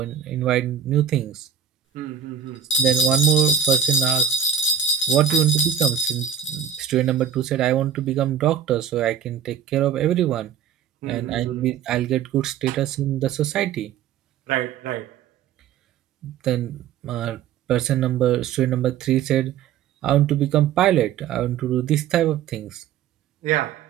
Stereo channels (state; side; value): quieter; left; 8.3 dB